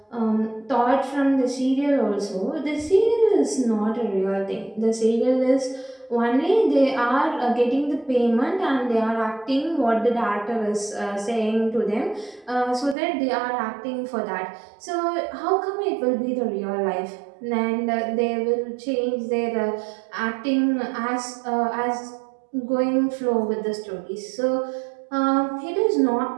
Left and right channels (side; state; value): left; drops out; at 13.0 s